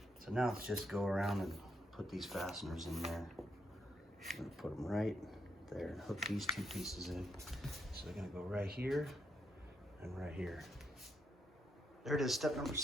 So now let's just go around and put these fasteners in there. I'm gonna put them right there and hook these two pieces in. So they're gonna go right here and right here. There it is, step number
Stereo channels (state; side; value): normal; both; correlation 0.78